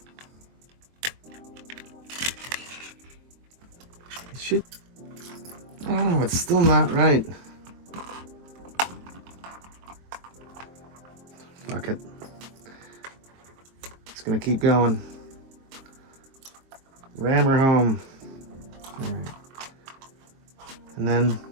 It should. Oh, it's still not right. Fuck it. It's gonna keep going. Ram her home. All right. And then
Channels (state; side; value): late; left; 23 ms